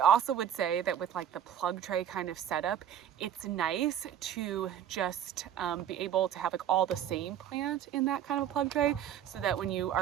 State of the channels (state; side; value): quieter; left; 9.9 dB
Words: would say that with like the plug tray kind of setup, it's nice to just be able to have like all the same plant in that kind of a plug tray, so that when you